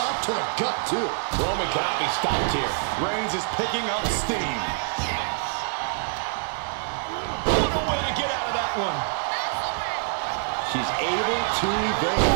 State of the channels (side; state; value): left; silent; digital silence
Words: to the gut, too. Roman cannot be stopped here. Reigns is picking up steam. What a way to get out of that one. She's able to